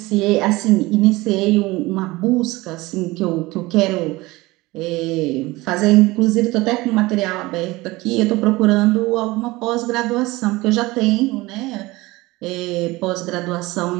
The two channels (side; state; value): left; quieter; 20.7 dB